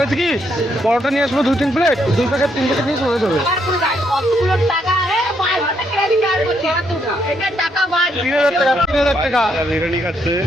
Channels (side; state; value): both; normal; correlation 0.74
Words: কি, পরোটা নিয়ে আসবো 2-3 প্লেট, 2 প্যাকেট 3 প্যাকেট নিয়ে চলে যাবে। 3,000 টাকা। 3,000 টাকা বিরিয়ানি খাচ্ছে,